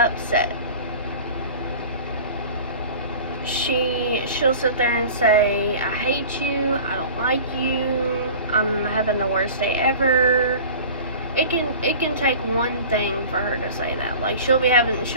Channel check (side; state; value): both; inverted; correlation -0.40